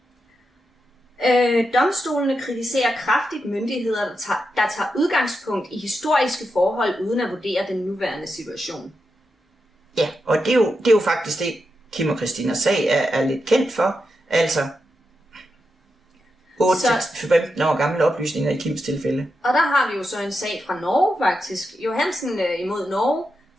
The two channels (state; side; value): normal; both; correlation 0.87